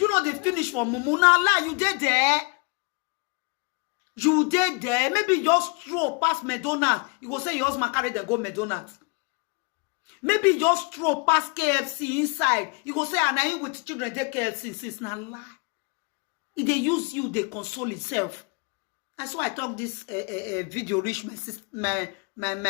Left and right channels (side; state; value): right; quieter; 31.9 dB